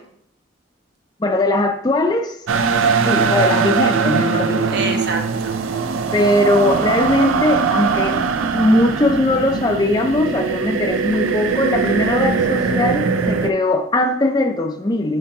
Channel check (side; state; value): both; normal; correlation 0.39